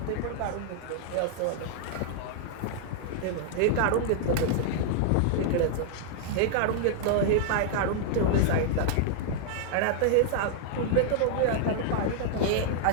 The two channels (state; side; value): different; both; correlation -0.01